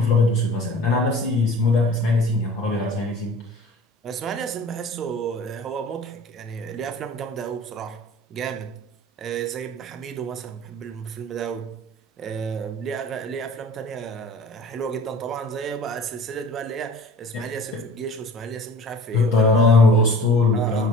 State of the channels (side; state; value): both; normal; correlation 0.45